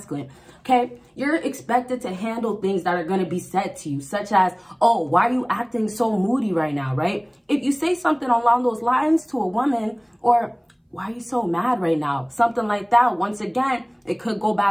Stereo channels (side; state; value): both; identical; correlation 1.00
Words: okay, you're expected to handle things that are going to be said to you, such as, oh, why are you acting so moody right now, right? If you say something along those lines to a woman, or why are you so mad right now, something like that, once again, it could go